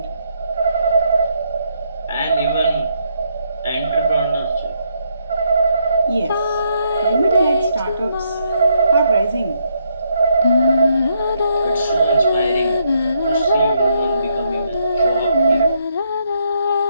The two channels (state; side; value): inverted; both; correlation -0.74